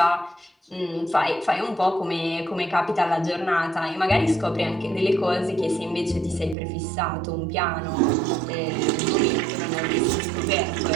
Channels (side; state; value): left; drops out; at 6.6 s